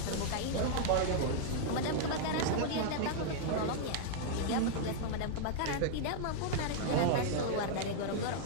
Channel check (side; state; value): both; different; correlation -0.01